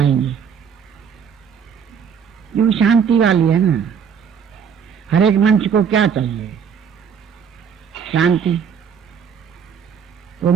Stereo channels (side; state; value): left; quieter; 7.1 dB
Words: ये शांति वाली है ना। हर एक मंच को क्या चाहिए? शांति। वो